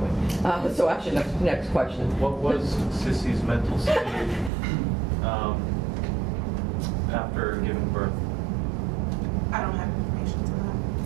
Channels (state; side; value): drops out; left; at 4.5 s